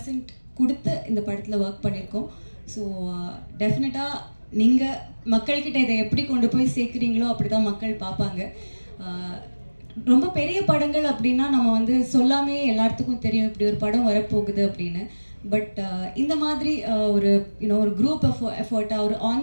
கொடுத்து இந்த படத்தில் ஒர்க் பண்ணியிருக்கோம். ஸோ டெஃபினட்டாக நீங்கள் மக்கள்கிட்ட இதை எப்படி கொண்டு போய் சேர்க்குறீங்களோ அப்படி தான் மக்கள் பார்ப்பாங்க. ரொம்ப பெரிய படங்கள் அப்படின்னா நம்ம வந்து சொல்லாமே எல்லாத்துக்கும் தெரியும் இப்படி ஒரு படம் வரப்போகுது அப்படின்னு. பட் இந்த மாதிரி ஒரு ஒரு குரூப் எஃபர்ட்டாக, ஒரு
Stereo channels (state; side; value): inverted; both; correlation -1.00